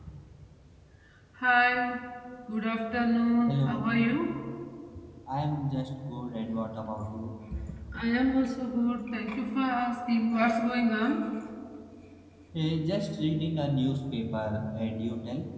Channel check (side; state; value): both; identical; correlation 1.00